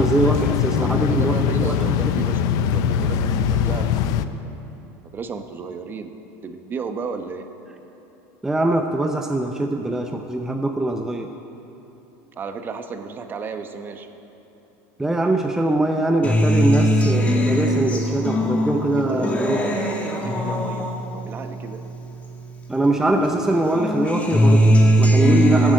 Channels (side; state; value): both; normal; correlation 0.67